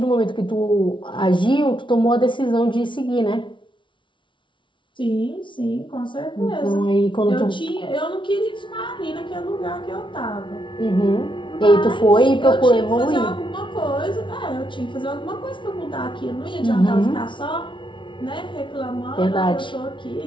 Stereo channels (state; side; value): late; right; 0.24 ms